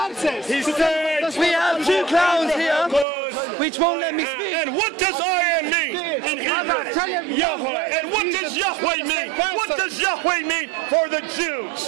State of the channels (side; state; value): left; drops out; at 3.1 s